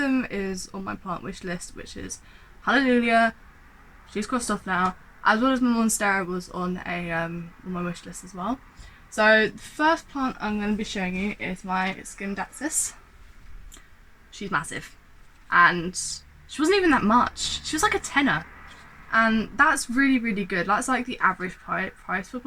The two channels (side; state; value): both; identical; correlation 1.00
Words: is on my plant wish list, which is Hallelujah. She's crossed off now, as well as my Monstera was on on my wish list as well. So the first plant I'm going to be showing you is my Scindapsus. She's massive, and she wasn't even that much. She was like a tenner, and that's really good. That's like the average price for